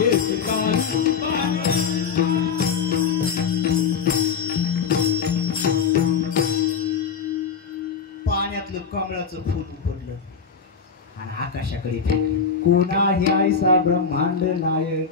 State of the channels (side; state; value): right; quieter; 6.1 dB